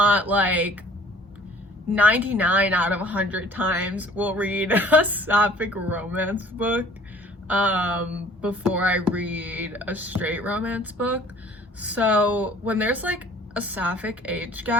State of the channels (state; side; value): normal; both; correlation 0.52